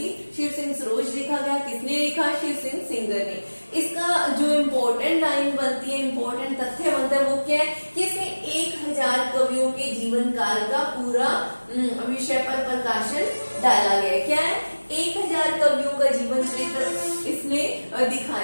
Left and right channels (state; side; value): inverted; both; correlation -1.00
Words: शिव सिंह सरोज लिखा गया। किसने लिखा? शिव सिंह सिंगर ने। इसका जो इम्पोर्टेंट लाइन बनती है, इम्पोर्टेंट तथ्य बनता है, वो क्या है कि इसमें 1000 कवियों के जीवन काल का पूरा विषय पर प्रकाशन डाला गया है। क्या है? 1000 कवियों का जीवन चरित्र इसमें